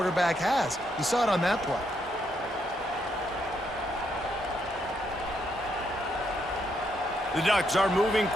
has. You saw it on that play. The Ducks are moving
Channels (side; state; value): both; normal; correlation 0.77